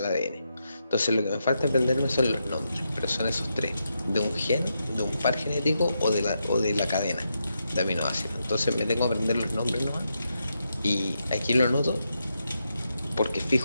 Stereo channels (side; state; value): both; inverted; correlation -0.84